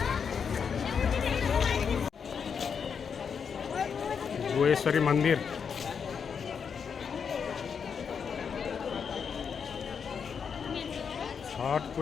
गुहेश्वरी मन्दिर छठ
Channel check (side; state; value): right; quieter; 6.6 dB